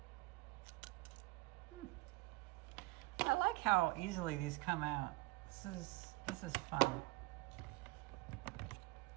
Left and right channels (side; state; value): left; quieter; 22.1 dB